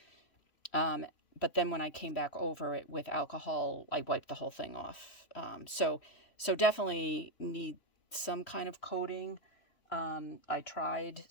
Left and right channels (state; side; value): late; right; 3.1 ms